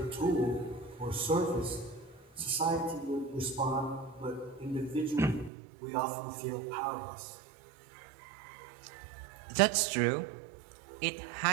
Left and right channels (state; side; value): drops out; left; at 5.5 s